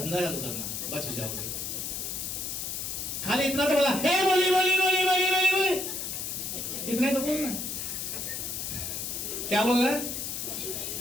चालू करना, बच जाओगे। खाली इतना तो बोला, हे बोली बोली बोली बोली बोली बोली, इतना तो बोलना। क्या बोल रहा है?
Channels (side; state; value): left; noise; hiss, 4 dB below the sound